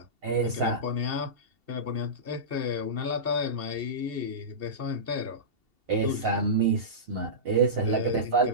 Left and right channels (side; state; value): left; late; 2.7 ms